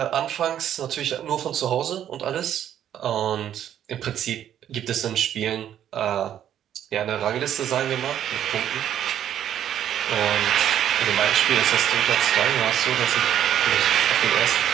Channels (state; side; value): quieter; left; 10.5 dB